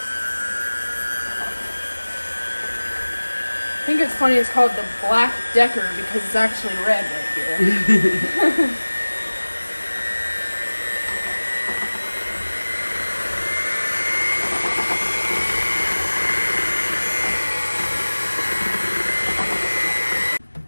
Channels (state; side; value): inverted; both; correlation -1.00